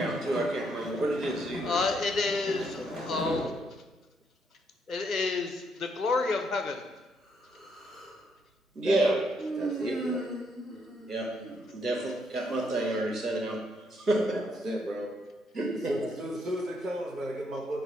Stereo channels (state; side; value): normal; both; correlation 0.74